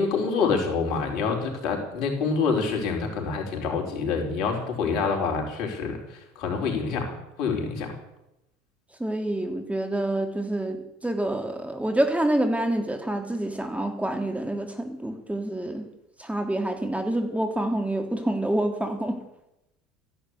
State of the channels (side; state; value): both; normal; correlation 0.69